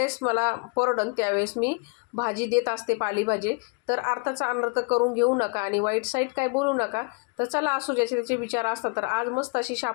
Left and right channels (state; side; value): quieter; right; 34.8 dB